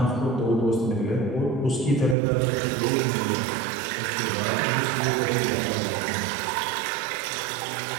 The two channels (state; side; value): drops out; left; at 2.1 s